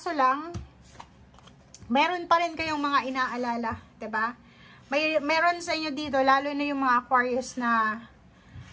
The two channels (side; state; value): both; identical; correlation 1.00